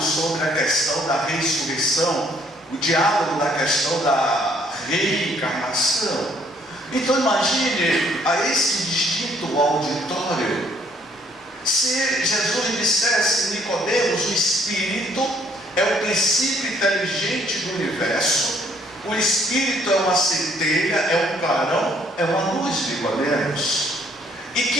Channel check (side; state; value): both; normal; correlation 0.64